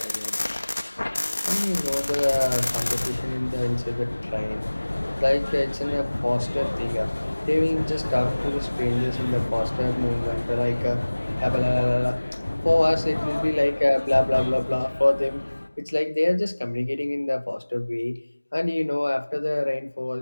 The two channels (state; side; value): inverted; both; correlation -1.00